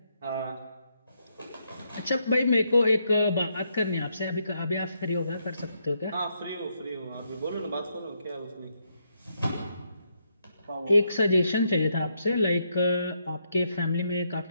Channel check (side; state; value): both; inverted; correlation -0.78